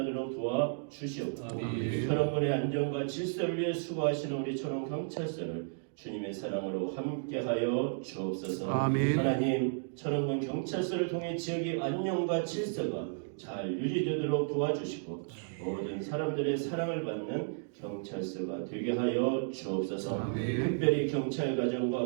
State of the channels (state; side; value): silent; left; digital silence